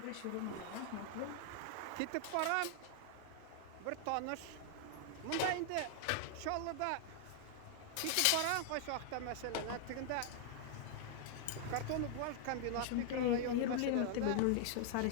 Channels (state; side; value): different; both; correlation 0.00